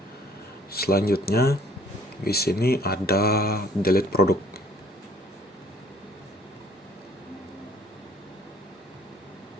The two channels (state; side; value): normal; both; correlation 0.56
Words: Selanjutnya di sini ada delete produk.